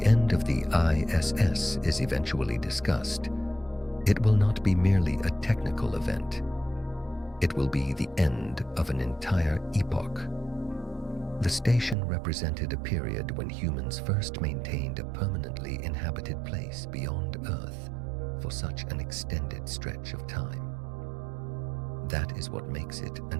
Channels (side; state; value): left; drops out; at 12.0 s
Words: end of the ISS is eventually discussed, it will not be merely a technical event. It will be the end of an entire epoch. The station represented a period when humans first maintained a permanently inhabited place beyond Earth for such an extended stretch of time. That is what makes it